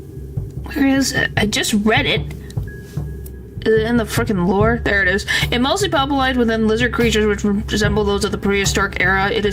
Where is it? I just read it. Is it in the frickin' lore? There it is. It mostly populated within lizard creatures which resemble those of the prehistoric era. It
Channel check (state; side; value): identical; both; correlation 1.00